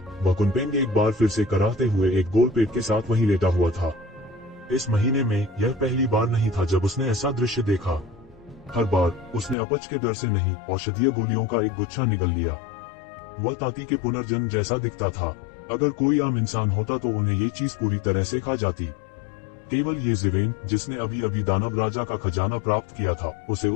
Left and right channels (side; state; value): right; drops out; at 9.6 s